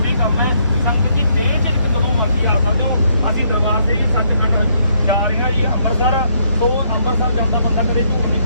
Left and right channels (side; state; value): both; inverted; correlation -0.71